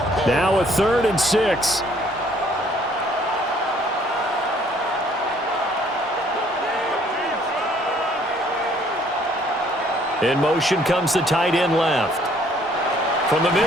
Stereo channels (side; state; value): both; normal; correlation 0.61